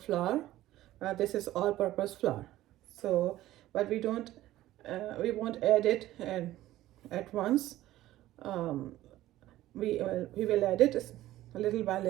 flour. This is all-purpose flour. So, but we won't add it at once. We will add it little by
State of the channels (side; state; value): left; quieter; 15.1 dB